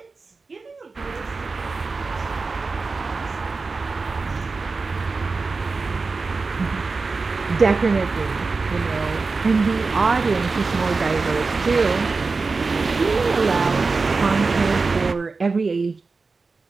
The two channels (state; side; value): quieter; left; 4.1 dB